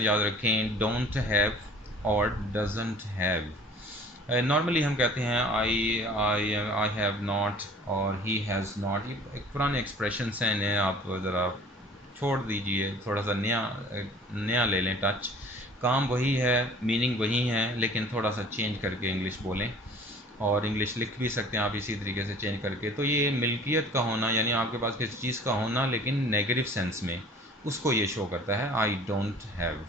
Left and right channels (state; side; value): normal; both; correlation 0.48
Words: याद रखें, डोंट हैव और डजंट हैव। नॉर्मली हम कहते हैं आई हैव नॉट और ही हैज़ नॉट, ये एक पुराने एक्सप्रेशंस हैं, इन्हें आप ज़रा छोड़ दीजिए, थोड़ा सा नया ले लें टच। काम वही है, मीनिंग वही है, लेकिन थोड़ा सा चेंज करके इंग्लिश बोलें, और इंग्लिश लिख भी सकते हैं आप इसी तरीके से चेंज करके। तो ये मिल्कियत का होना, यानी आपके पास किसी चीज़ का होना लेकिन नेगेटिव सेंस में, उसको ये शो करता है आई डोंट हैव